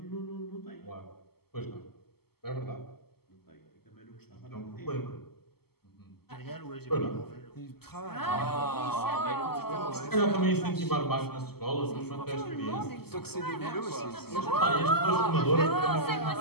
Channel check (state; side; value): late; right; 0.96 ms